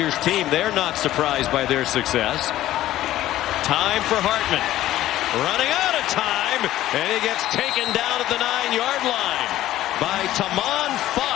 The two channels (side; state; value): right; quieter; 14.2 dB